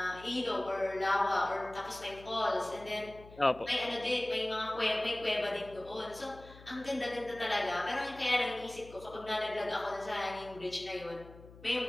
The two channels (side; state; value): left; noise; hum, 19 dB below the sound